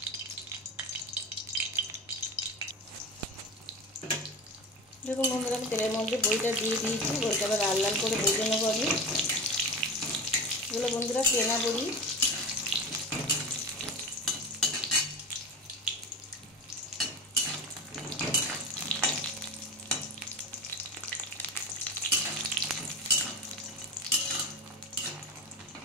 দেখুন বন্ধুরা, আমি তেলের মধ্যে বড়িটা দিয়ে দিয়েছি। বড়িটা আবার লাল লাল করে ভেজে নেবো আমি। এগুলো বন্ধুরা কেনা বড়ি।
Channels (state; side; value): normal; both; correlation 0.28